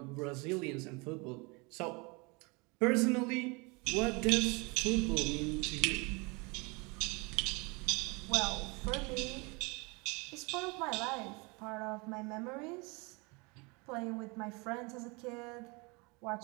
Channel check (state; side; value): quieter; left; 28.5 dB